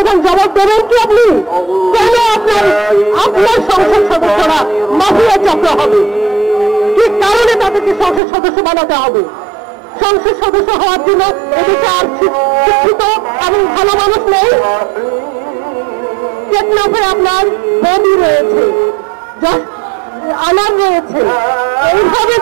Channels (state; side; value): drops out; left; at 8.2 s